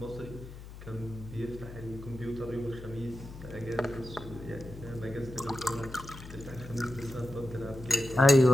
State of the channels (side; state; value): left; noise; hum, 14 dB below the sound